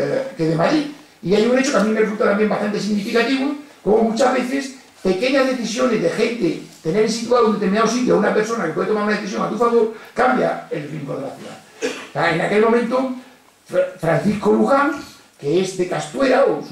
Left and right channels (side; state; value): both; identical; correlation 1.00